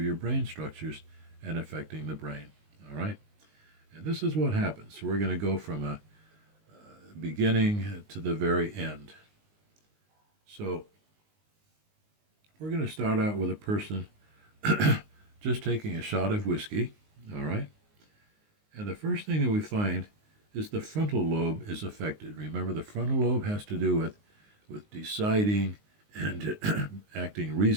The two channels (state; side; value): late; left; 19 ms